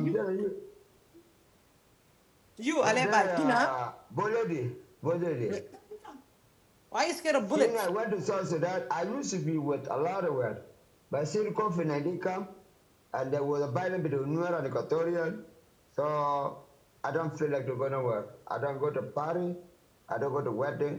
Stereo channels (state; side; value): identical; both; correlation 1.00